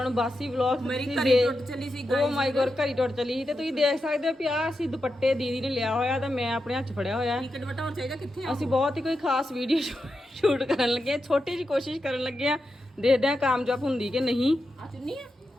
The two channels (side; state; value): both; normal; correlation 0.88